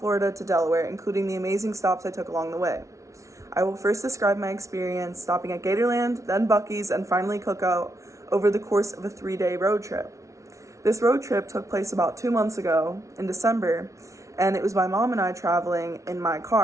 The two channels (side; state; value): left; late; 0.15 ms